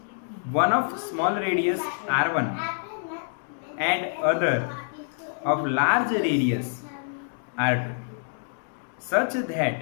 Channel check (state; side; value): silent; right; digital silence